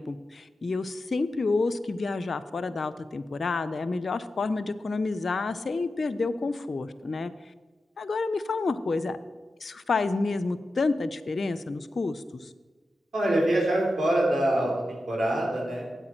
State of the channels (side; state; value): both; normal; correlation 0.91